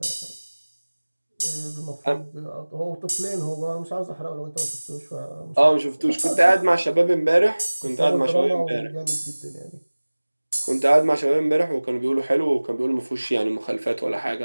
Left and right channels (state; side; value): inverted; both; correlation -1.00